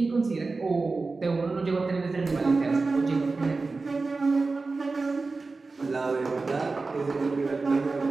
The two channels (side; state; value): left; quieter; 3.9 dB